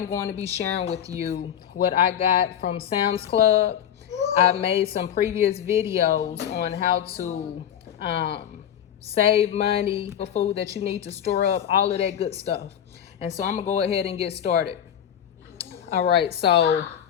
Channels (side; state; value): right; quieter; 9.6 dB